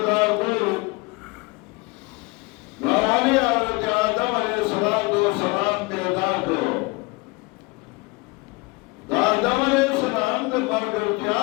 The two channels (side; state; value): right; quieter; 25.8 dB